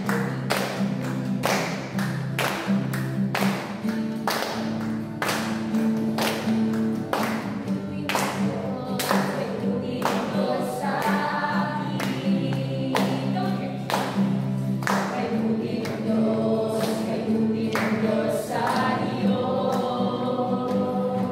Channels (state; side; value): identical; both; correlation 1.00